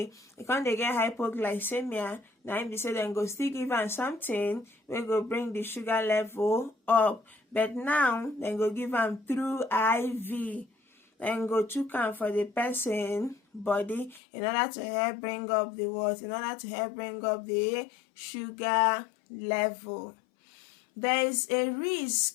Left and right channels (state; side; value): drops out; right; at 14.2 s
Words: come dey get hypoglycemia, na im be say dem go still give am something wey go bring the sugar level up. But now dem go give am through IV. Dem go chook am for the person body in order to help bring up the what? In order to help bring up the sugar level. There is a